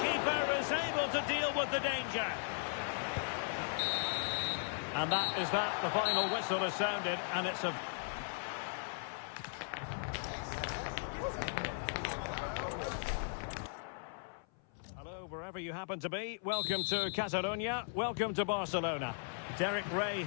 keeper is able to deal with the danger. And that is that. The final whistle has sounded, and it's a... Hello, wherever you happen to be. Welcome to Catalonia. Welcome to Barcelona. Derek Ray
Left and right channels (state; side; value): silent; right; 53 dB below the other